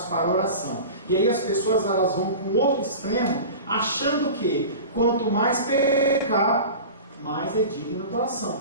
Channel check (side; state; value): both; inverted; correlation -0.34